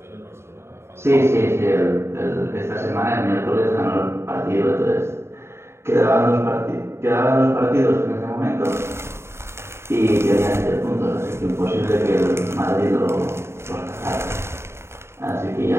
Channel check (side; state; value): left; late; 0.13 ms